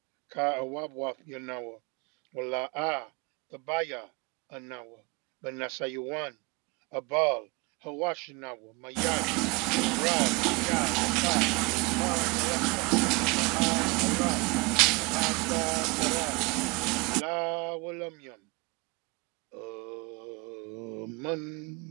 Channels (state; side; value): quieter; left; 27.3 dB